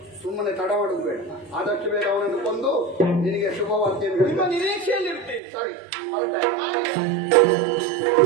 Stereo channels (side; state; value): left; drops out; at 5.4 s